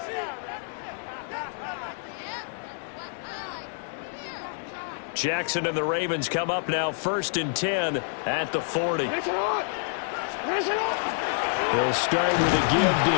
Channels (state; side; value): silent; right; digital silence